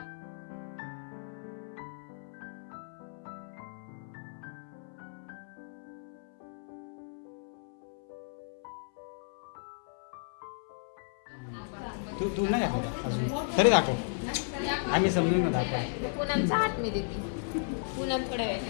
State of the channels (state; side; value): silent; right; 55 dB below the other